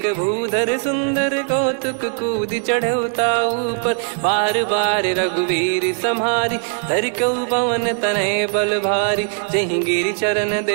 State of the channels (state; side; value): silent; left; 55 dB below the other